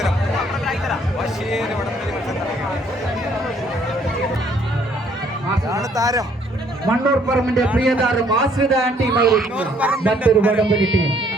വാശിയേറിയ വടംവലി മത്സരം നടക്കുകയാണ്. താരം മണ്ണൂർ പറമ്പിന്റെ പ്രിയതാരം ആശ്രിത ടീം മറ്റൊരു വടംവലി ടീം.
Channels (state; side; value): normal; both; correlation 0.63